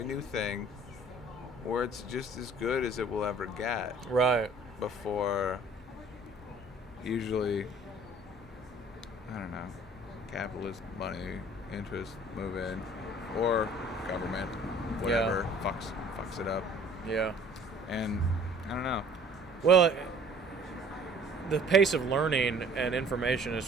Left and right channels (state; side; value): normal; both; correlation 0.53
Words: new thing where it's just as good as it will ever get Right. before usually, I don't know, capitalist money interests move in, or government, whatever, fucks it up. Yeah. And I don't know. Well, the pace of learning and information is